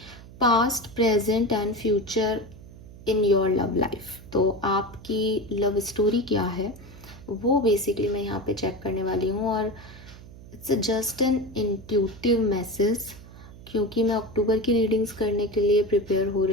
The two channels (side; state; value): right; noise; hum, 18 dB below the sound